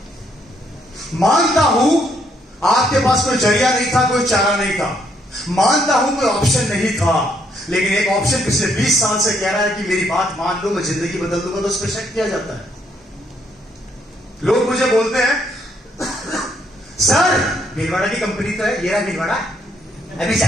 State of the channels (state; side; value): normal; both; correlation 0.71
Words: मानता हूं आपके पास कोई जरिया नहीं था, कोई चारा नहीं था, मानता हूं कोई ऑप्शन नहीं था, लेकिन एक ऑप्शन पिछले 20 साल से कह रहा है कि मेरी बात मान लो, मैं जिंदगी बदल दूंगा, तो उस पर शक किया जाता है। लोग मुझे बोलते हैं सर भीलवाड़ा की कंपनी तो है, ये रहा भीलवाड़ा, अभी